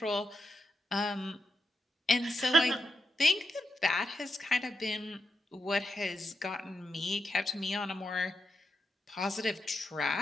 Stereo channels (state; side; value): normal; both; correlation 0.85